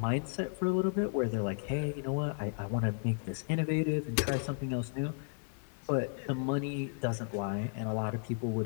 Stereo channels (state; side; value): silent; right; 55 dB below the other